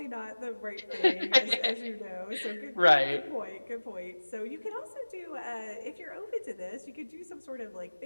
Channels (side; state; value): both; inverted; correlation -1.00